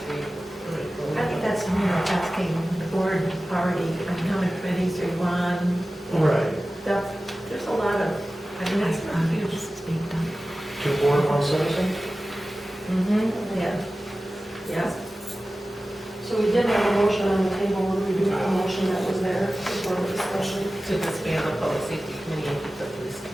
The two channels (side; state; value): both; normal; correlation 0.96